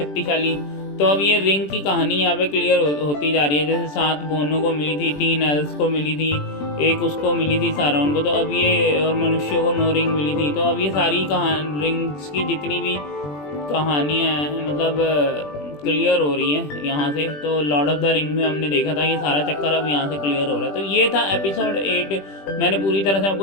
तो अब ये रिंग की कहानी यहाँ पे क्लियर होती जा रही है। जैसे 7 बोनों को मिली थी, 3 एल्स को मिली थी, एक उसको मिली थी सारोन को, तो अब ये और मनुष्यों को 9 रिंग मिली थी। तो अब ये सारी रिंग्स की जितनी भी कहानियाँ हैं मतलब क्लियर हो रही है यहाँ से। तो लॉर्ड ऑफ द रिंग में हमने देखा था ये सारा चक्कर अब यहाँ से क्लियर हो रहा है। तो ये था एपिसोड 8, मैंने पूरी तरह से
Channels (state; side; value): late; right; 20 ms